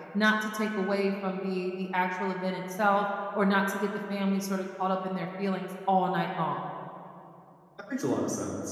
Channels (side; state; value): both; identical; correlation 1.00